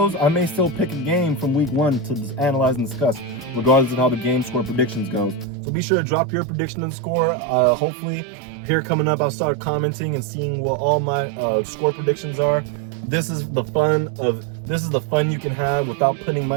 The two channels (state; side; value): drops out; left; at 5.5 s